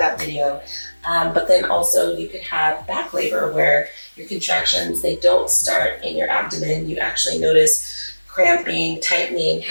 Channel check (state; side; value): inverted; both; correlation -1.00